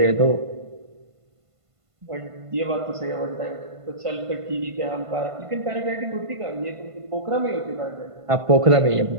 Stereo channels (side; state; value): left; late; 1.5 ms